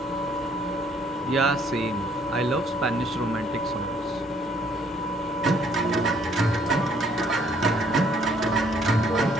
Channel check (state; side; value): normal; both; correlation 0.64